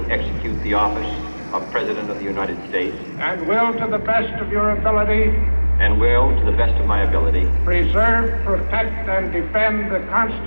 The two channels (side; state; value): both; inverted; correlation -1.00